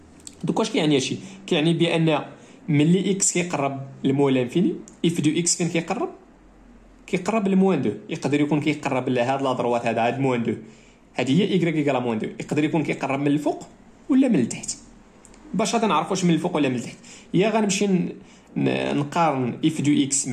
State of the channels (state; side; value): identical; both; correlation 1.00